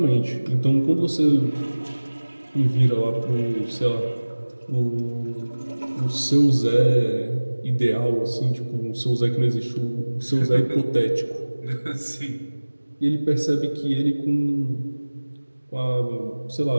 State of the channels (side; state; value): both; inverted; correlation -1.00